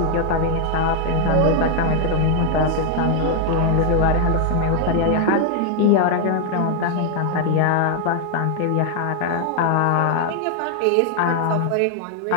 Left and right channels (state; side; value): different; both; correlation 0.00